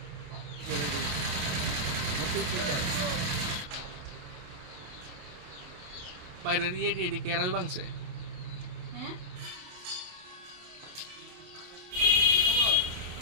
বাইরের এদিকে এরাই ভাঙছে।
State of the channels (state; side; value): late; left; 28 ms